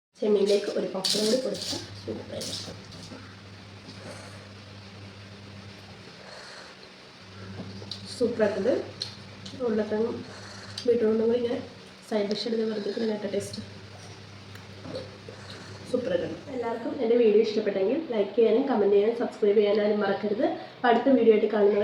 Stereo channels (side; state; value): both; identical; correlation 1.00